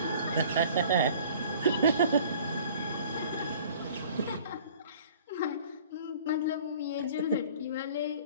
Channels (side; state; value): both; inverted; correlation -0.49